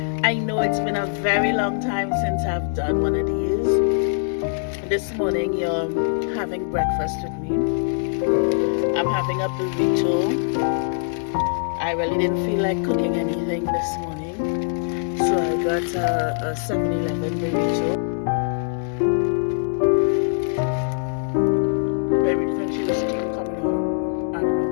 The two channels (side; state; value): right; silent; digital silence